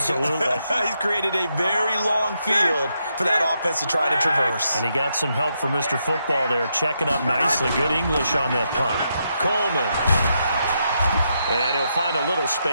He's created a very long field for that offense to try to traverse. And he got some help from Mr. Football there, checking up nicely. Good English on that punt. Coleman. And he'll find a little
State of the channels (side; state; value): both; inverted; correlation -0.81